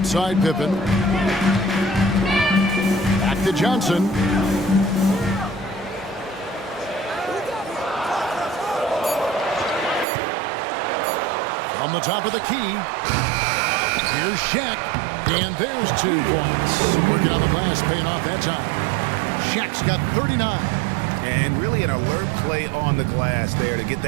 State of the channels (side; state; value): left; drops out; at 10.1 s